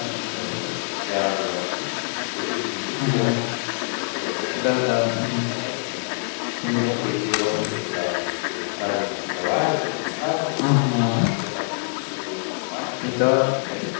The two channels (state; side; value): silent; right; digital silence